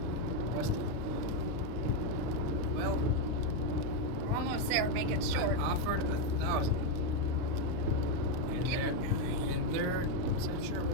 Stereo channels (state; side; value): late; left; 39 ms